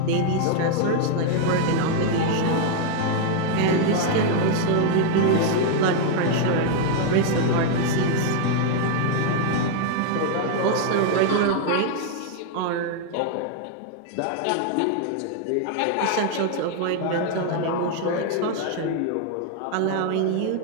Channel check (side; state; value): both; different; correlation 0.00